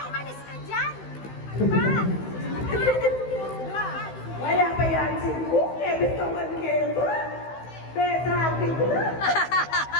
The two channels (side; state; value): right; late; 16 ms